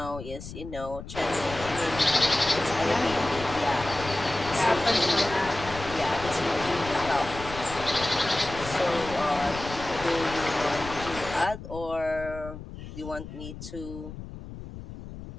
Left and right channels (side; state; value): left; noise; rumble, 12 dB below the sound